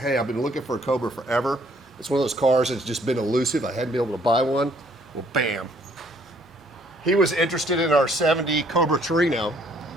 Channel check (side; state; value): both; normal; correlation 0.63